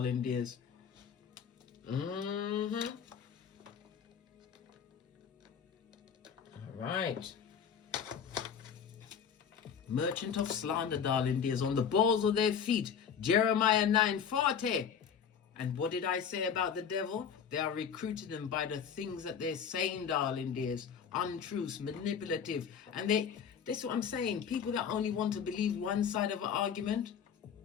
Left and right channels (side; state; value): right; quieter; 7.4 dB